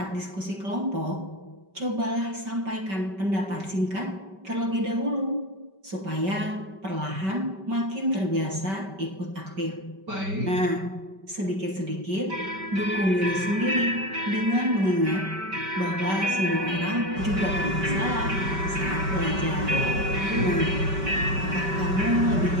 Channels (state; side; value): late; left; 5.2 ms